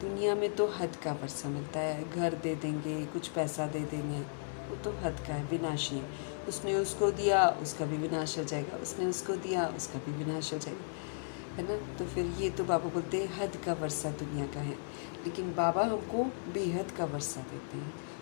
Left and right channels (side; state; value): right; silent; digital silence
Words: में तो हद का वर्षा मिलता है, घर दे देंगे, कुछ पैसा दे देंगे, वो तो हद का है, विनाशी है। उसने उसको दिया, उसका भी विनाश हो जाएगा, उसने उसको दिया, उसका भी विनाश हो जाएगा, है ना। तो फिर ये तो बाबा बोलते हैं हद का वर्षा दुनिया का है, लेकिन बाबा हमको बेहद का वर्षा देते हैं।